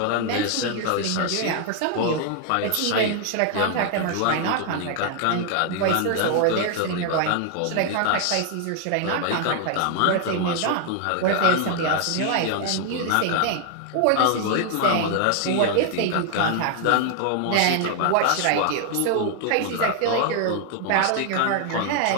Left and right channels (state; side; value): different; both; correlation 0.00